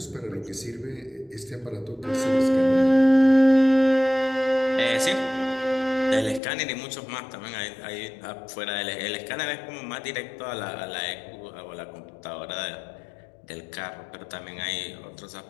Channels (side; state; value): right; drops out; at 6.4 s